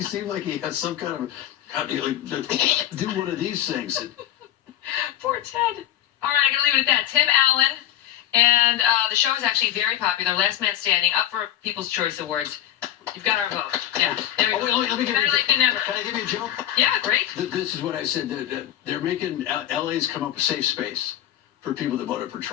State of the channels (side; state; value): right; quieter; 11.9 dB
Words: seem like he had some kind of, do one of these things? Poor Ted. All right, I'm going to leave it at that. Tim Allen, and the show is actually very popular. Last Man Standing, up for People's Choice Awards. You've got our vote. Yeah, there you go. Wait, let me give Better late than never. Can I give you a joke? Yeah, great. This is what I said. They're making LA's come up with safe space for people that voted for